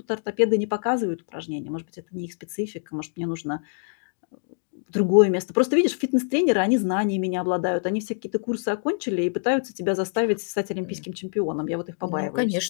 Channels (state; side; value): silent; right; 60 dB below the other